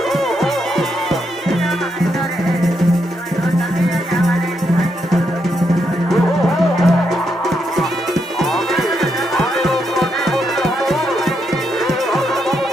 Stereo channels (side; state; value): both; normal; correlation 0.80